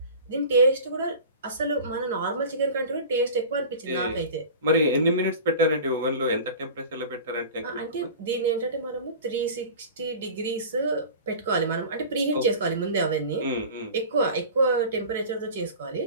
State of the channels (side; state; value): both; inverted; correlation -0.37